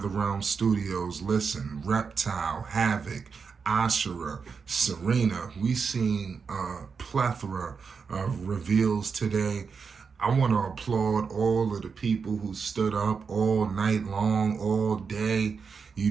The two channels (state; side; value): quieter; left; 5.6 dB